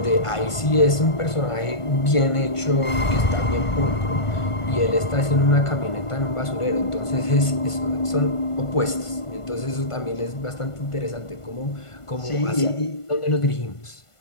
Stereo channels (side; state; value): right; late; 1.5 ms